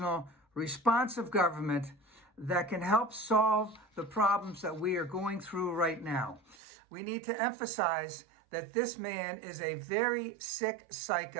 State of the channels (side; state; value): left; drops out; at 6.6 s